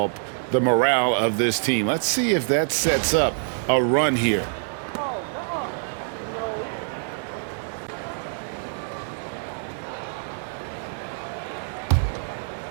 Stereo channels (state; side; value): silent; left; digital silence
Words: the morale of this team. Let's see if that sets up a run here.